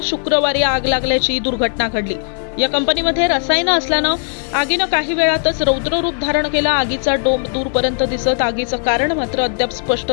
शुक्रवारी आग लागल्याची दुर्घटना घडली। या कंपनीमध्ये रसायनं असल्यानं आगीनं काही वेळातच रौद्र रूप धारण केलं। आगीचा डोंब दूरपर्यंत दिसत आगीचं कारण मात्र अद्याप स्पष्ट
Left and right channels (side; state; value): right; silent; 55 dB below the other